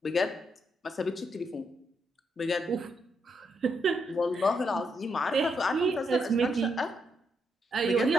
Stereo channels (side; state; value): both; normal; correlation 0.79